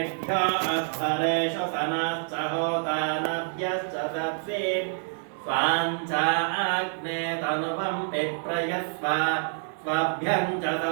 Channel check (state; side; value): silent; left; digital silence